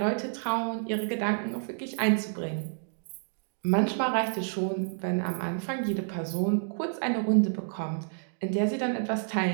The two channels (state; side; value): silent; left; digital silence